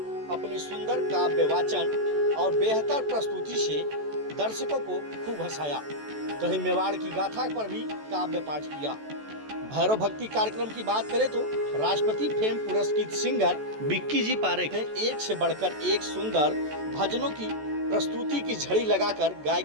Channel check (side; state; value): left; late; 14 ms